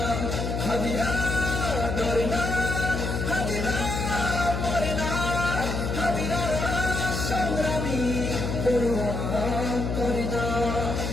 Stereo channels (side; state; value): left; noise; hum, 2 dB below the sound